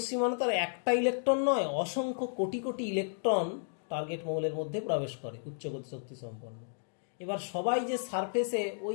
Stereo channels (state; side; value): silent; right; digital silence